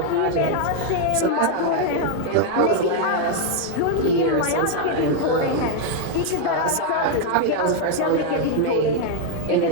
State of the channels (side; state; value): both; different; correlation 0.00